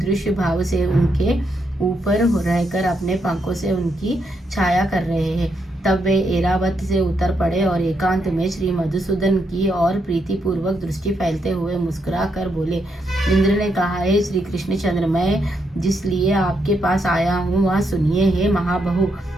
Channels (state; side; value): normal; both; correlation 0.79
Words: भाव से उनके ऊपर रहकर अपने पंखों से उनकी छाया कर रहे हैं। तब वे ऐरावत से उतर पड़े और एकांत में श्री मधुसूदन की और प्रीति पूर्वक दृष्टि फैलते हुए मुस्कुरा कर बोले। इंद्र ने कहा, हे श्री कृष्णचंद्र, मैं जिस लिए आपके पास आया हूँ वह सुनिए। हे महाबहु,